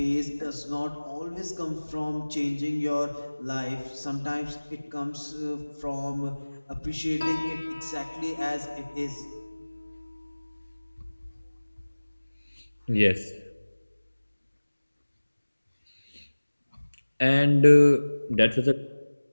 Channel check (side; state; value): both; inverted; correlation -1.00